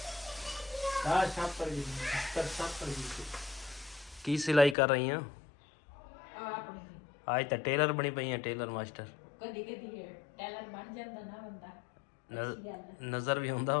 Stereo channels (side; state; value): right; drops out; at 4.8 s